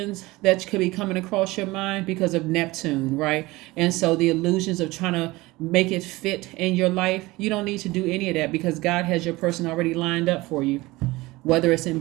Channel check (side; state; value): left; quieter; 20.5 dB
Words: that could be coming across your mind because of Neptune, right? And so the illusions of trying to make it fit in your life, you don't need to do any of that because God has your person already lined up for you, whether it's in